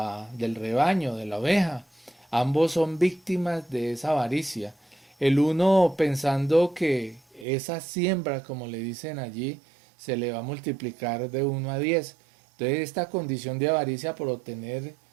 rebaño, de la oveja. Ambos son víctimas de esa avaricia. El uno pensando que esa siembra, como le dicen allí, se le va a multiplicar de 1 a 10. Entonces esta condición de avaricia por obtener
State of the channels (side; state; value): left; drops out; at 7.5 s